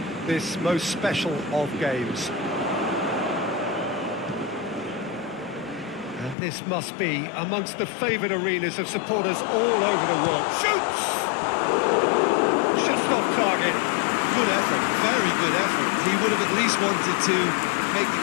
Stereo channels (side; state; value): right; drops out; at 6.4 s